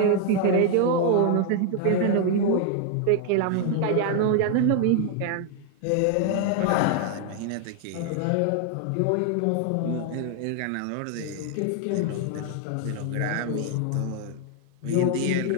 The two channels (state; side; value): different; both; correlation 0.00